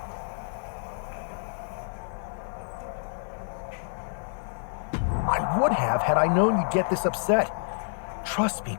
I would have had I known you'd get this upset. Trust me,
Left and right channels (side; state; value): right; silent; 59 dB below the other